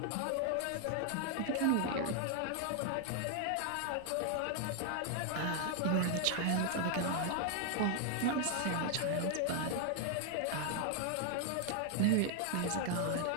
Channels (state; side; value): different; both; correlation 0.00